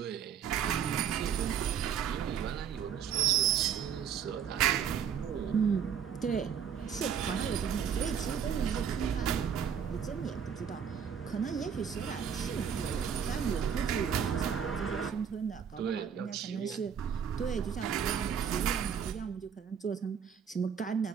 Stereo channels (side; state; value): left; quieter; 7.8 dB